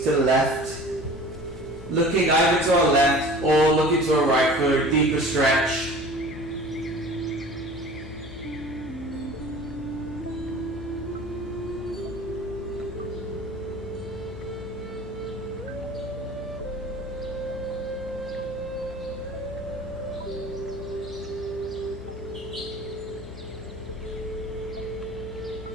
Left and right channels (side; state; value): left; noise; hum, 13 dB below the sound